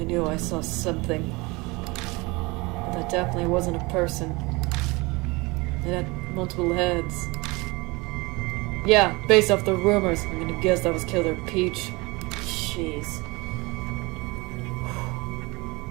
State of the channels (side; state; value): left; quieter; 24.7 dB